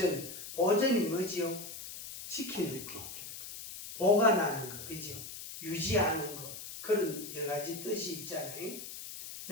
보존이 뭐지요? 지키는 거, 보관하는 거, 그죠? 유지하는 거, 그런 여러 가지 뜻이 있잖아요.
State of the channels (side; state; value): left; noise; hiss, 10 dB below the sound